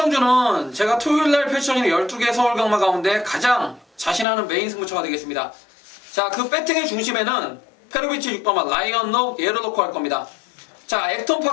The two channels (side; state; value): right; drops out; at 4.2 s